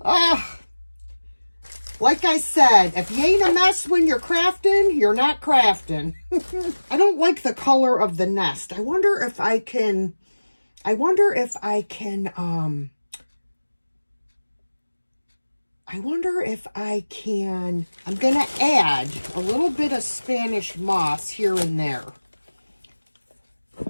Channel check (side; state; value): both; inverted; correlation -1.00